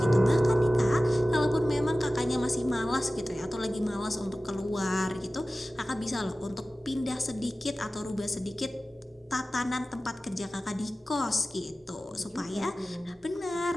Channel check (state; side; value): normal; both; correlation 0.96